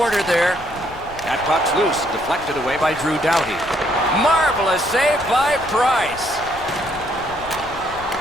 there. That puck's loose, deflected away by Drew Doughty. Marvelous save by Price.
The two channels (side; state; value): left; noise; rumble, 18 dB below the sound